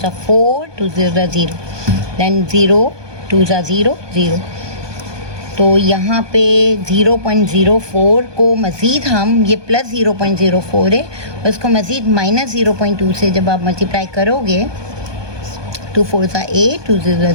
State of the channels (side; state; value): left; late; 1.2 ms